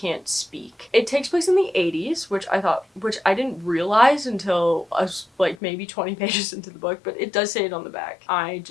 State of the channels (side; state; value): right; drops out; at 5.6 s